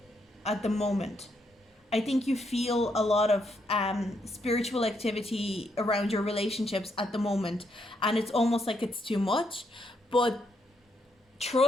at the moment. I think you feel a lot of spiritual activity around your relationships at the moment, and it's almost like it's too much. But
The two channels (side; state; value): both; normal; correlation 0.77